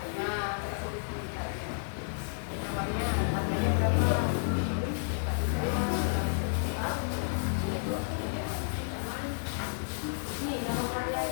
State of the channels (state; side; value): silent; right; digital silence